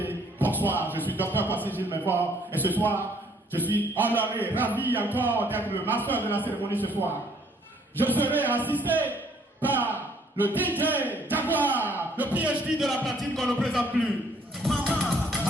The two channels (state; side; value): normal; both; correlation 0.63